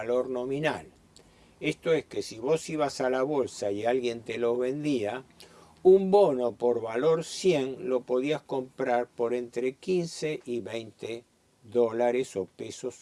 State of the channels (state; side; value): identical; both; correlation 1.00